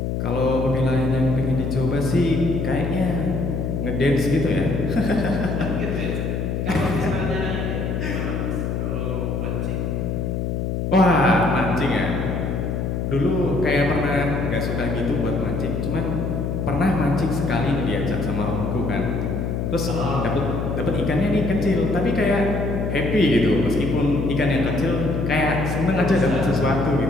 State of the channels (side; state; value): left; noise; hum, 1 dB below the sound